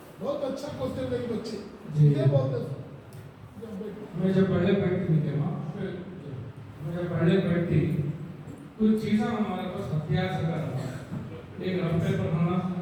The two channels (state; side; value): identical; both; correlation 1.00